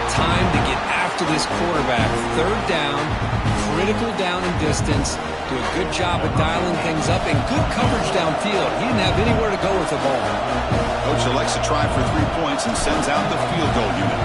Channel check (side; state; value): both; identical; correlation 1.00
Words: time to get after this quarterback. 3rd down, critical down and distance. Do a good job of dialing things up, and good coverage downfield. He didn't have anywhere to go with the ball. Coach elects to try for 3 points and sends out the field goal unit.